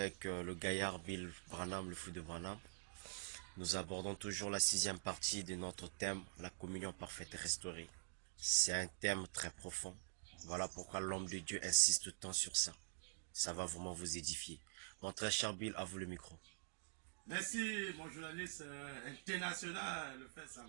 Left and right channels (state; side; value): silent; left; digital silence